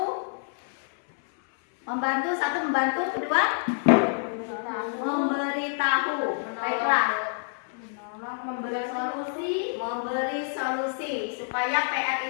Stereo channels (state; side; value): silent; right; 60 dB below the other